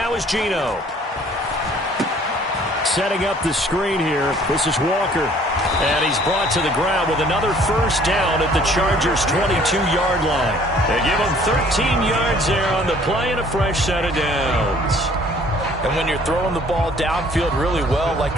is Geno. Setting up the screen here. This is Walker. And he's brought to the ground with another 1st down at the Chargers' 22-yard line. They give him 13 yards there on the play and a fresh set of downs. And when you're throwing the ball downfield really well like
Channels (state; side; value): normal; both; correlation 0.57